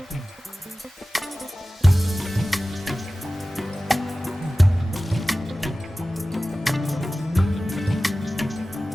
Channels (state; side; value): normal; both; correlation 0.96